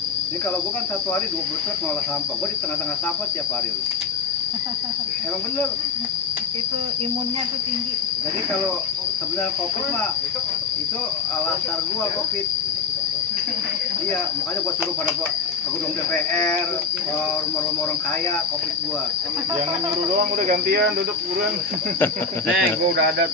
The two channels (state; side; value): quieter; right; 4.8 dB